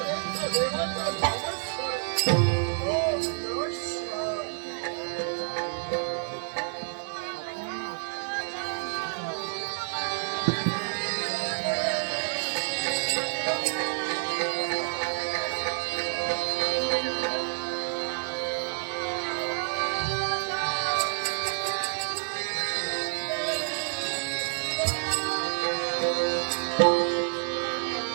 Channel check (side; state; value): left; silent; 59 dB below the other